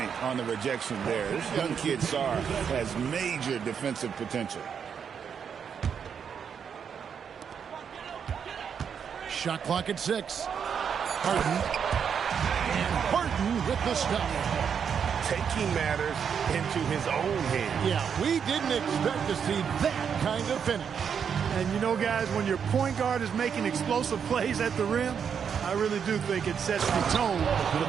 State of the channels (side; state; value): left; quieter; 7.3 dB